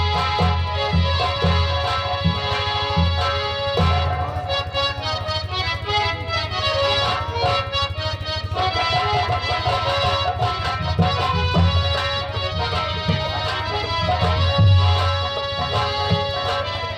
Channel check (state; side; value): identical; both; correlation 1.00